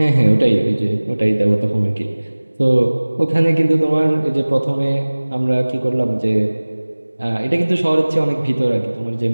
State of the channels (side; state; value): both; inverted; correlation -1.00